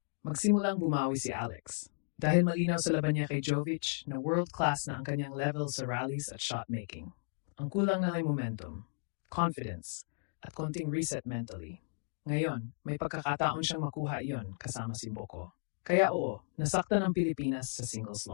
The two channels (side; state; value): right; silent; digital silence